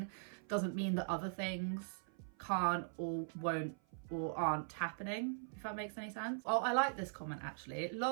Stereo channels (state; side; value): silent; left; 50 dB below the other